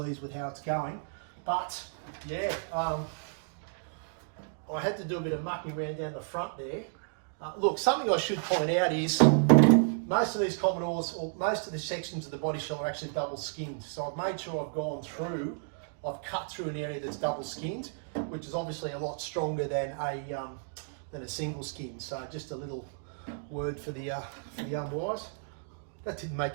with how it's going. But yeah, I had to do a bit of mucking around down the front there. Look, something I should point out is most of these Commodores, or most of the sections of the body shell are actually double skinned. So I've made sure I've gone through, I've cut through an area that's double skinned, which is obviously a lot stronger than a single skin. So just a little word for the unwise. That didn't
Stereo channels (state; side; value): silent; left; digital silence